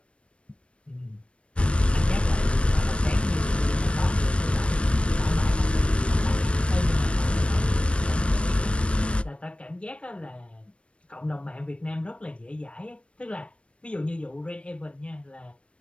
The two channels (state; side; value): late; right; 0.059 ms